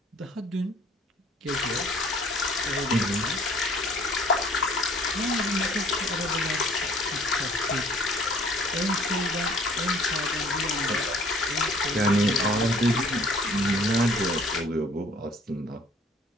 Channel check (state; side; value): normal; both; correlation 0.55